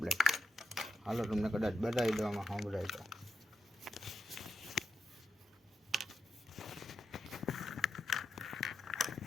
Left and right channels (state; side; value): normal; both; correlation 0.85